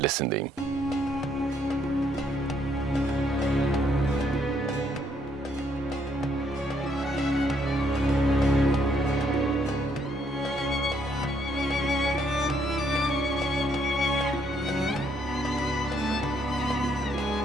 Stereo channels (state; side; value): normal; both; correlation 0.71